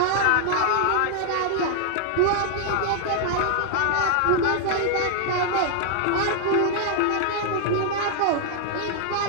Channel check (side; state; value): both; different; correlation 0.00